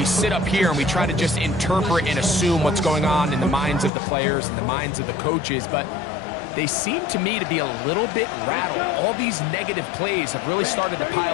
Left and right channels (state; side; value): drops out; right; at 3.9 s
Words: sit up here and we try to just interpret and assume what's going on in the minds of the players and the minds of the coaches, but they seem to me to be a little bit rattled. All these negative plays have really started to